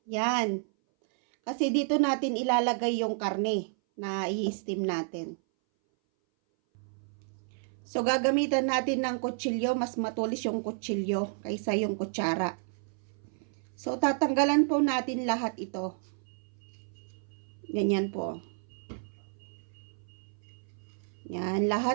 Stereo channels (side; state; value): left; silent; 57 dB below the other